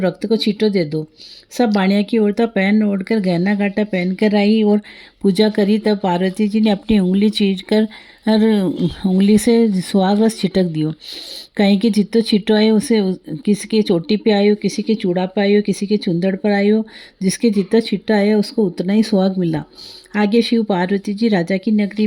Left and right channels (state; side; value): identical; both; correlation 1.00